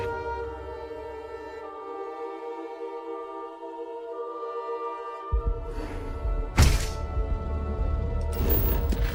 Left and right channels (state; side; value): identical; both; correlation 1.00